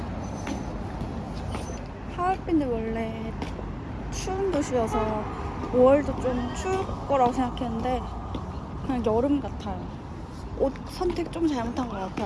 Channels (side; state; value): both; identical; correlation 1.00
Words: 하얼빈이 원래 추운 도시여서 5월도 좀 추울 거라고 생각했는데 그냥 여름 같아요. 옷 선택 좀 잘못한 것